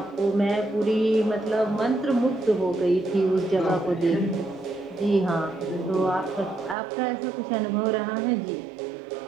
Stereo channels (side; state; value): left; drops out; at 6.8 s